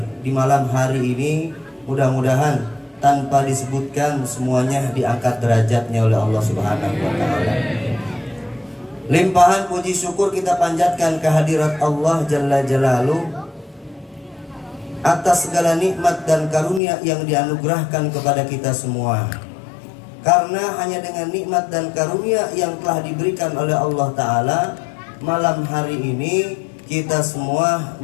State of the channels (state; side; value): drops out; right; at 16.8 s